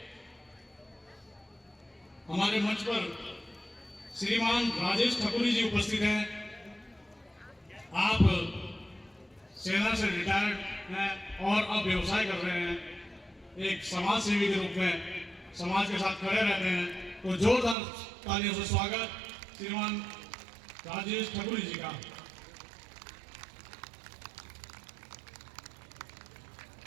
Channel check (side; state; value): left; drops out; at 17.8 s